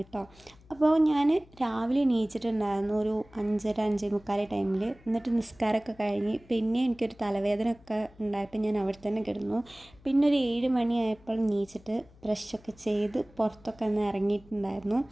അപ്പോൾ ഞാൻ രാവിലെ എണീച്ചിട്ടുണ്ടായിരുന്നു ഒരു 5:30 ടൈമിൽ. എന്നിട്ട് നിസ്കാരമൊക്കെ കഴിഞ്ഞ് പിന്നെ എനിക്കൊരു തലവേദന ഒക്കെ ഉണ്ടായപ്പോൾ ഞാൻ അവിടെ തന്നെ കിടന്നു. പിന്നെ ഒരു 7 മണിയായപ്പോൾ എണീച്ചിട്ട് ബ്രഷൊക്കെ ചെയ്ത് പുറത്തൊക്കെ ഒന്ന് ഇറങ്ങിയിട്ടുണ്ടായിരുന്നു.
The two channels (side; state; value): left; noise; hum, 26 dB below the sound